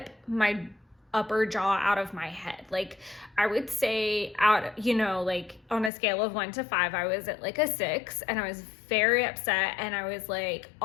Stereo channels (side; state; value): right; drops out; at 5.9 s